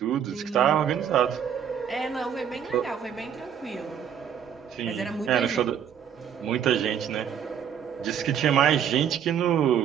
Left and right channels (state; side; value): quieter; left; 8.6 dB